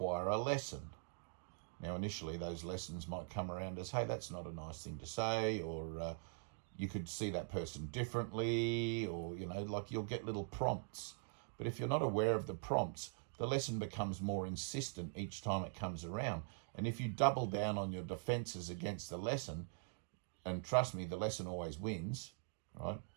a lesson. Now, initially, those lessons might come around as, hey, that's not a nice thing to say, or you could see that person differently, or, like you'll get little prompts. But if you're not aware of the prompts, the lesson becomes more insistent each time it comes around. And if you double down on your defenses against the lesson, and trust me, the lesson always wins, right?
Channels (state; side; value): silent; left; digital silence